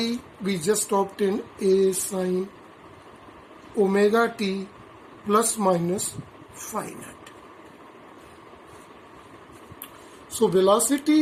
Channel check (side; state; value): both; identical; correlation 1.00